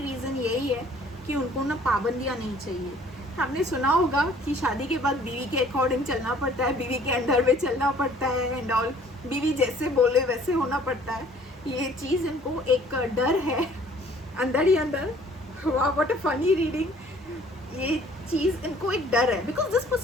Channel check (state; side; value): normal; both; correlation 0.55